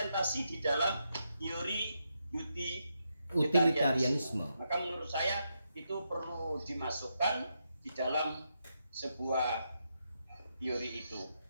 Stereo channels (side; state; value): both; inverted; correlation -0.83